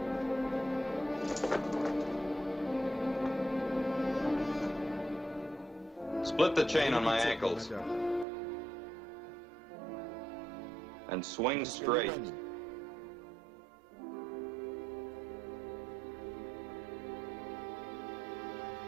Split the chain on my ankles and swing straight.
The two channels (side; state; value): left; drops out; at 8.2 s